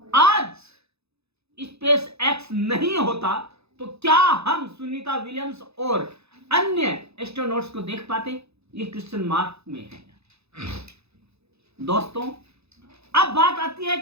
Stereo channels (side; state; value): left; late; 0.79 ms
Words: आज स्पेस एक्स नहीं होता तो क्या हम सुनीता विलियम्स और अन्य एस्ट्रोनॉट्स को देख पाते? ये क्वेश्चन मार्क में है। दोस्तों, अब बात आती है